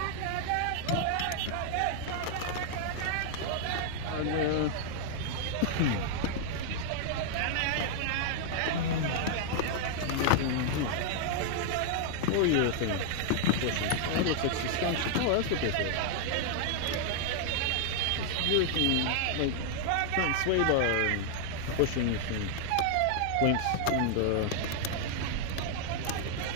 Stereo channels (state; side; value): different; both; correlation 0.00